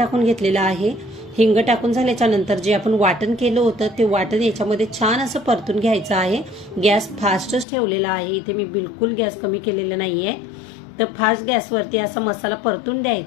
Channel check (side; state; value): right; drops out; at 7.7 s